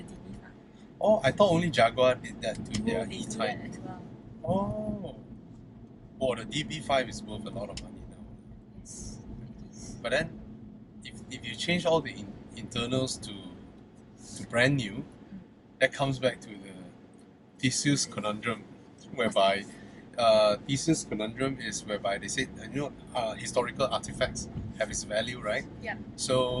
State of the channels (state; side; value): identical; both; correlation 1.00